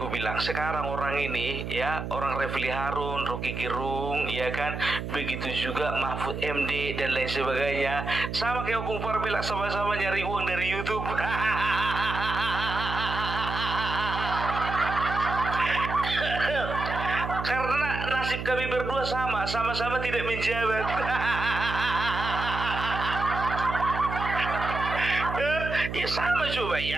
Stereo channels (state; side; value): noise; right; hum, 6 dB below the sound